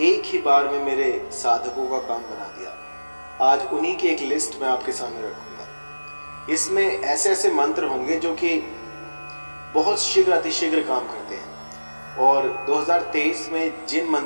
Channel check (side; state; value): both; inverted; correlation -1.00